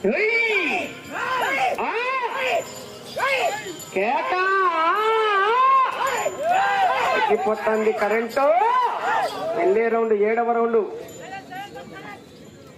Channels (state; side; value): identical; both; correlation 1.00